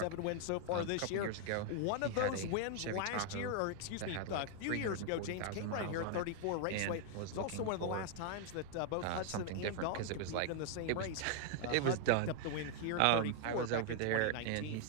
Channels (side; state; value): both; different; correlation 0.00